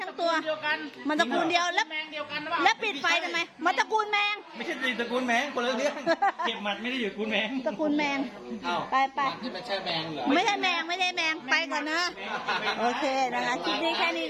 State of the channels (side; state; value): both; identical; correlation 1.00